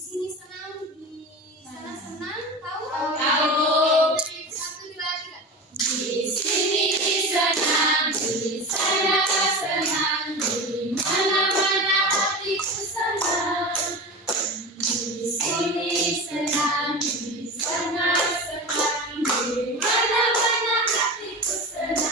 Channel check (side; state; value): both; normal; correlation 0.28